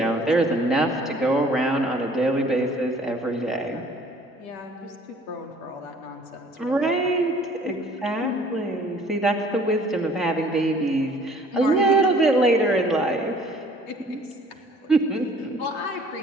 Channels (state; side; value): normal; both; correlation 0.54